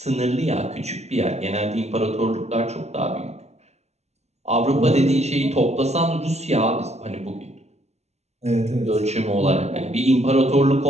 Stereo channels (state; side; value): late; left; 0.32 ms